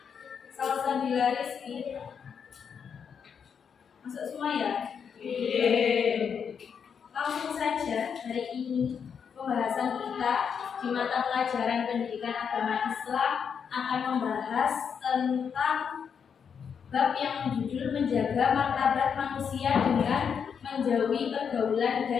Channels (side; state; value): right; quieter; 7.0 dB